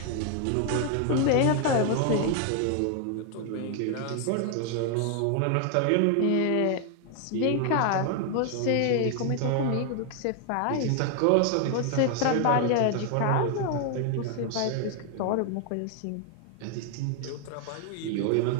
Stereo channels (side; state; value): both; different; correlation 0.00